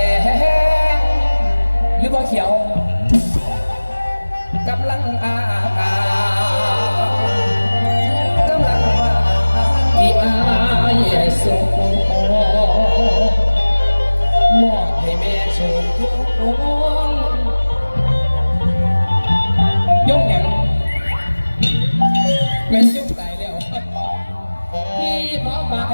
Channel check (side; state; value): both; inverted; correlation -1.00